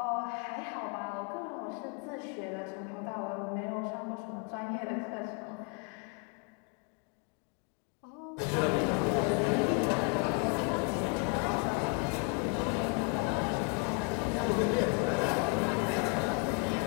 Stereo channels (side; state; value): right; quieter; 33.9 dB